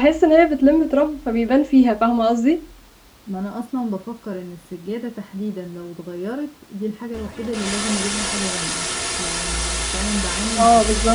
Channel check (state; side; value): identical; both; correlation 1.00